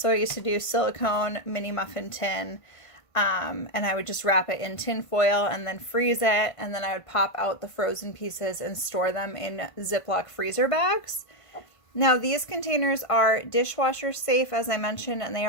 I used to do silicone mini muffin tin, and I would just wrap it in tin foil and then freeze it, and then I would pop out the frozen pieces and store them in Ziploc freezer bags. Now these containers are dishwasher safe, as I mentioned, and they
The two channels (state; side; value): late; right; 1.5 ms